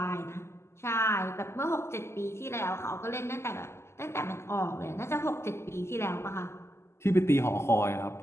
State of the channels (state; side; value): late; right; 0.13 ms